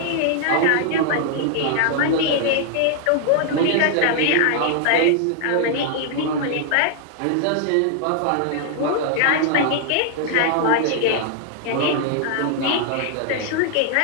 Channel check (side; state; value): both; different; correlation 0.00